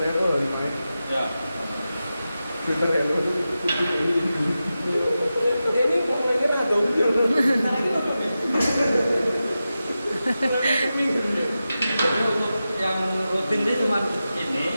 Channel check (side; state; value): both; inverted; correlation -0.92